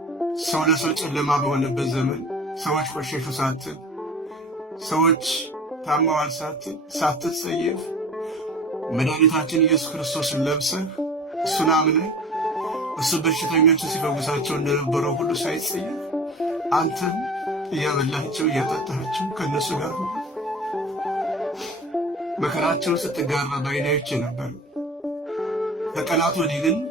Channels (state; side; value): normal; both; correlation 0.38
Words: ሰው ለሰው ጨለማ በሆነበት ዘመን ሰዎች ቆሸሹ ሳትል፣ ሰዎች ታመዋል ሳትል፣ ሳትጸየፍ መድኃኒታችን ኢየሱስ ክርስቶስን ለብሰህ እሱን አምነህ እሱ በሽተኞችን ሲፈውሳቸው እንደነበረው ሁሉ ሳይጸየፍ አንተም እያበላቸው እያጠጣቸው ከነሱ ጋር ነው። መከራቸው ስትጋራ ባይናዮች ነበር። ከቀናት ወዲህ ግን